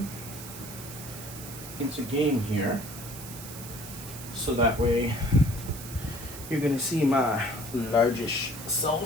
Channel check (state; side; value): noise; right; hiss, 12 dB below the sound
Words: into game here. So that way you're going to see my largish